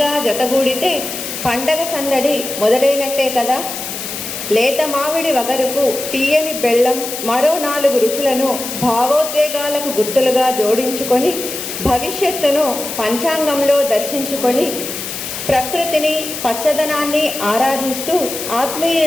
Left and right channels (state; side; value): noise; left; hiss, 7 dB below the sound